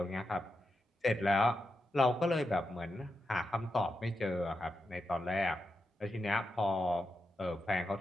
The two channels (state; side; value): normal; both; correlation 0.87